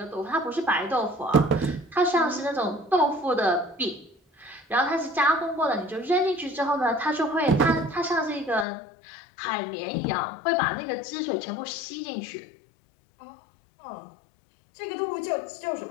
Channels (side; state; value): right; drops out; at 8.7 s